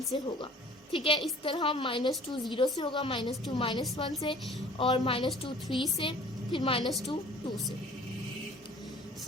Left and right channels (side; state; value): both; normal; correlation 0.49